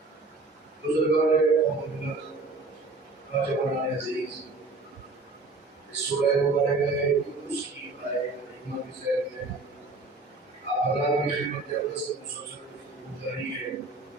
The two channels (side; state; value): left; quieter; 3.5 dB